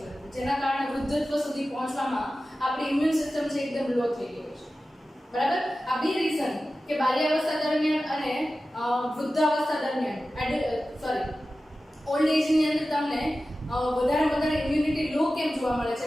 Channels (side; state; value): both; normal; correlation 0.94